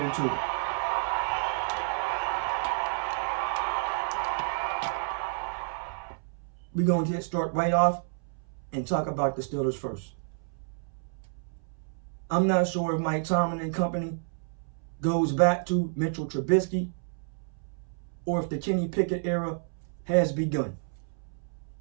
into it. We're going to start right off and talk about the Steelers first. I'm not sure if Mike Tomlin and company goes back to Mitchell Trubisky or if the Kenny Pickett era has begun.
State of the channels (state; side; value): silent; left; 58 dB below the other